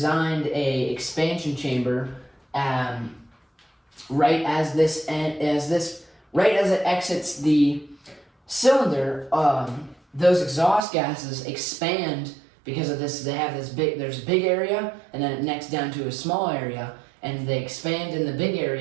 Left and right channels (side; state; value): left; drops out; at 10.9 s